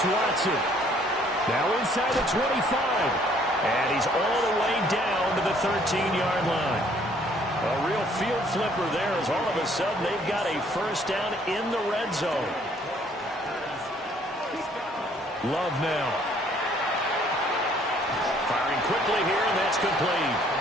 Watson. Now inside the 25. And he's all the way down to the 13-yard line. A real field flipper there as all of a sudden they've got a first down in the red zone. Love now. Firing quickly here, and that's complete.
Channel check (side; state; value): both; normal; correlation 0.62